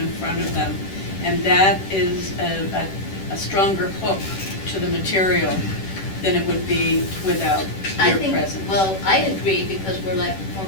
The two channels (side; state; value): right; late; 10 ms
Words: front of them. And that is a stronger hook to the material than it would be without your presence. Well, I agree, because we're live